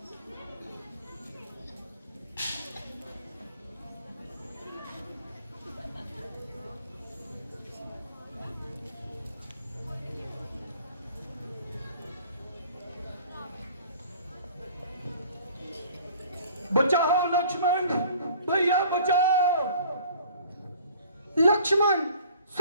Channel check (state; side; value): inverted; both; correlation -0.51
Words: बचाओ लक्ष्मण, भैया बचाओ। लक्ष्मण,